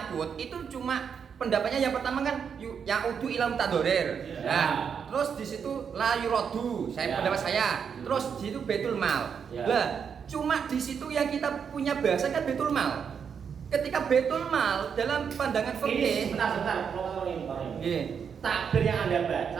itu cuma pendapatnya yang pertama kan ya'udu ila mutadorir. Nah, terus di situ la yuradu, pendapat saya. Terus di situ Baitul Mal. Lah, cuma di situ yang kita punya bahasa kan Baitul Mal. Ketika Baitul Mal dalam pandangan fikih. Sebentar, Nggih. Takbir yang Anda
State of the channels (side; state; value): left; quieter; 7.0 dB